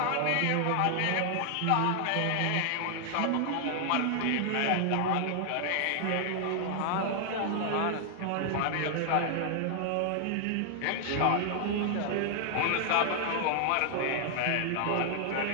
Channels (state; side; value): different; both; correlation 0.00